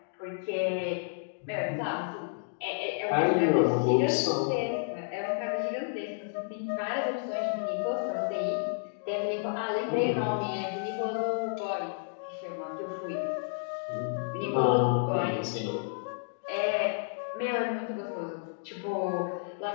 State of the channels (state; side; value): silent; right; digital silence